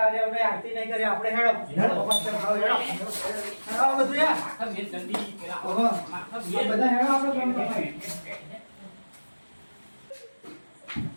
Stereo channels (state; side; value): inverted; both; correlation -1.00